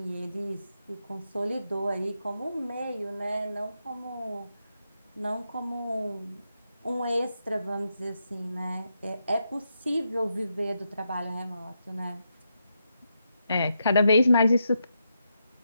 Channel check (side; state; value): both; inverted; correlation -0.83